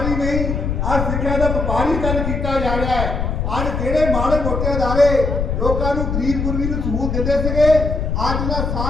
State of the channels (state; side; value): noise; left; rumble, 1 dB below the sound